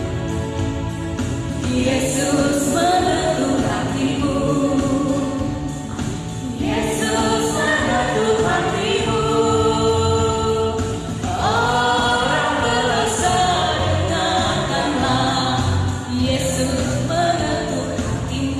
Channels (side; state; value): both; identical; correlation 1.00